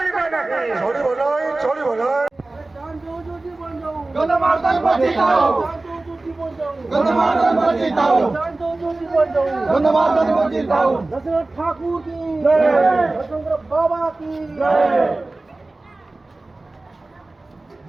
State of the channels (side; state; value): left; quieter; 3.1 dB